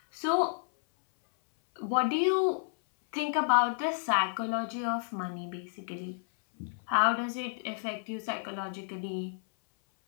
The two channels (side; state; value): right; silent; 57 dB below the other